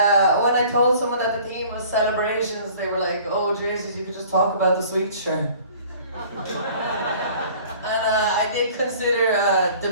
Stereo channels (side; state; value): both; inverted; correlation -0.49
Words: I told someone that the theme was celebrations, they were like, oh Jesus, you could just talk about the sweets, sure. And I did consider